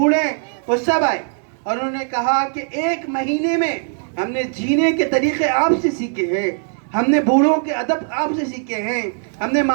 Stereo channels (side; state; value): left; silent; 57 dB below the other